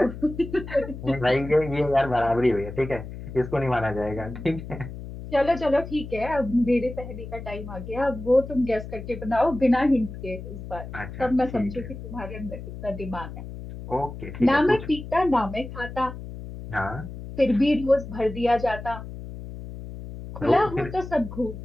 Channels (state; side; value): noise; left; hum, 11 dB below the sound